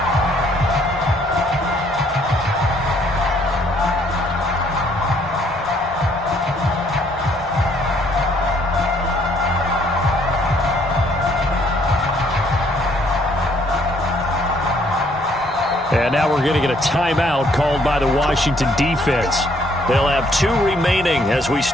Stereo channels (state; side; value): normal; both; correlation 0.66